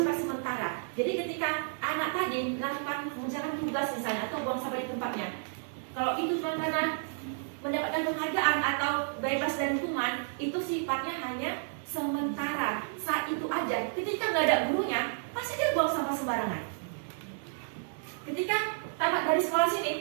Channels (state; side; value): silent; left; 57 dB below the other